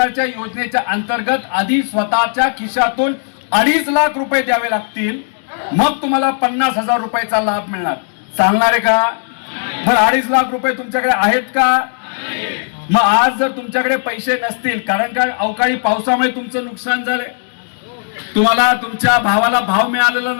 योजनेच्या अंतर्गत आधी स्वतःच्या खिशातून 2.5 लाख रुपये द्यावे लागतील. मग तुम्हाला 50,000 रुपयाचा लाभ मिळणार. चालणार आहे का? बरं, 2.5 लाख रुपये तुमच्याकडे आहेत का? मग आज जर तुमच्याकडे पैसे नसतील, कारण का अवकाळी पावसामुळे तुमचं नुकसान झालंय, तुम्हाला तुमच्या भावाला भाव मिळालेला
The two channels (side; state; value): right; silent; digital silence